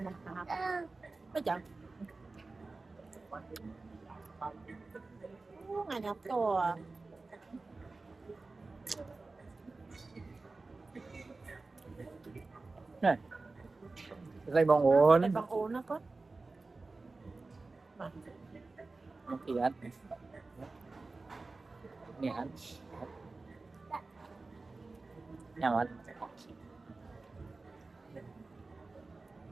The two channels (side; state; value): left; quieter; 3.6 dB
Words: hả có chậm ngày nhập to này tay bong ôn tay bằng ổn nó có một thì ăn nè ăn nhầm ăn